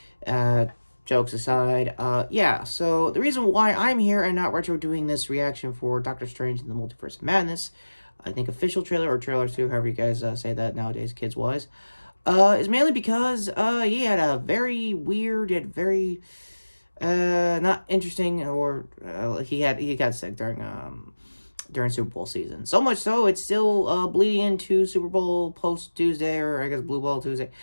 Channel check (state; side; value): inverted; both; correlation -1.00